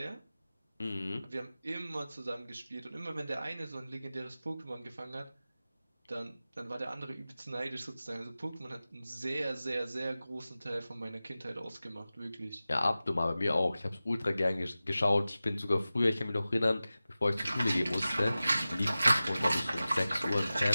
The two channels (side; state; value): both; inverted; correlation -0.96